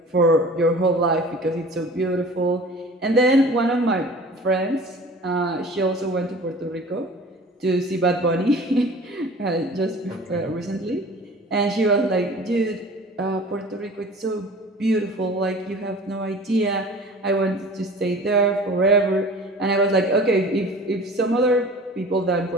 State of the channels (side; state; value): both; normal; correlation 0.43